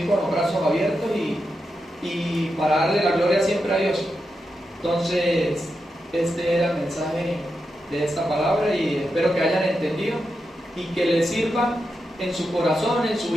con los brazos abiertos y para darle la gloria siempre a Dios. Entonces, este era el mensaje de esta palabra y espero que hayan entendido y que les sirva en su corazón, en su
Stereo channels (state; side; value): normal; both; correlation 0.87